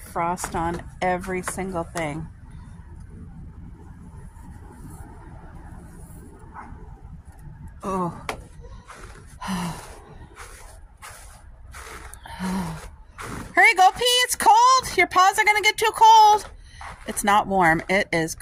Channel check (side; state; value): both; identical; correlation 1.00